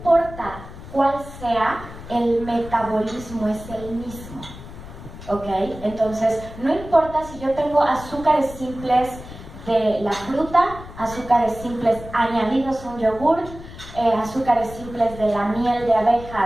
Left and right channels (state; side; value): noise; left; rumble, 14 dB below the sound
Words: cuál sea, el metabolismo es el mismo, ¿ok? Entonces, no importa si yo tengo azúcares simples de la fruta, azúcares simples añadidos a un yogurt, azúcares simples de la miel de abeja